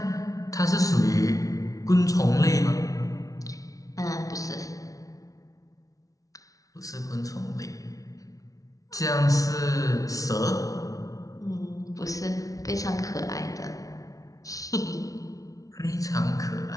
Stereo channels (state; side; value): late; right; 0.17 ms